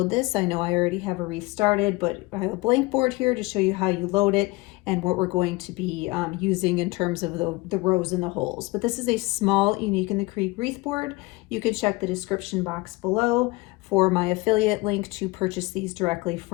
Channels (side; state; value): right; quieter; 22.7 dB